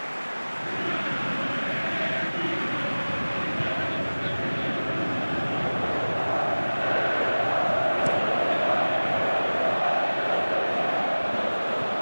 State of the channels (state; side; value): inverted; both; correlation -1.00